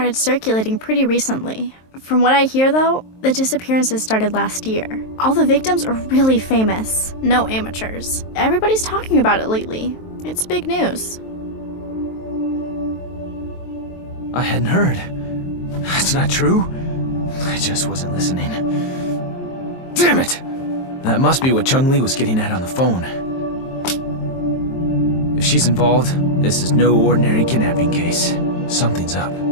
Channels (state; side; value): late; right; 23 ms